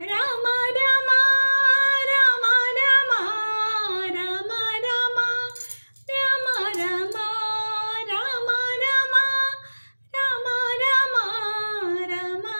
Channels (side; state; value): both; inverted; correlation -1.00